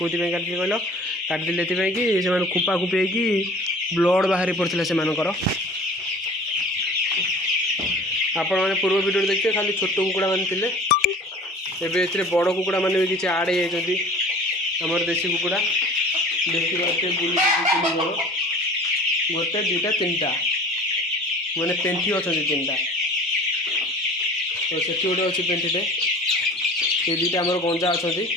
कहल काटी कि से खुंपा खुंपी होगी ब्लड बाहरी पड़ता से आपण मैंने पूर्व वीडियो देखिए खाली छोट कुकुड़ा मान थे एवं बड़ कुकुड़ा मैंने भी किसी आड़ होमर देसी कुकुड़ा देखिए बुल गोटे दुटा तीन टा मैंने पेंठी अच्छा तीन टा तो से गोटे अच्छी पेंठीटे ये दुटा आम गंजा अच्छा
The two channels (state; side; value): normal; both; correlation 0.44